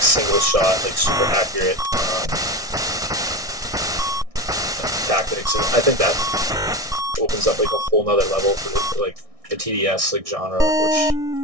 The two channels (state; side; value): late; left; 1.6 ms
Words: shot, like super accurate tactics. And I think that opens up like a whole nother level for like the TDS like genre, which